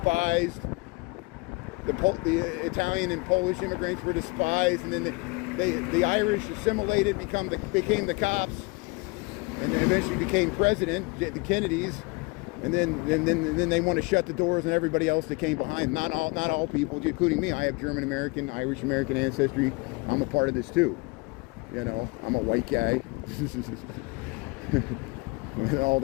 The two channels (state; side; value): quieter; right; 26.9 dB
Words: The Italian and Polish immigrants were despised, and then the Irish assimilated, became the cops, and then eventually became president, the Kennedys. And then they want to shut the doors on everybody else that came behind. Not all people, including me. I have German American, Irish American ancestry. I'm a part of this too. I'm a white guy. With all